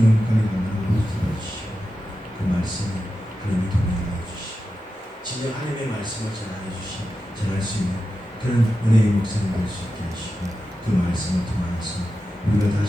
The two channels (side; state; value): both; normal; correlation 0.91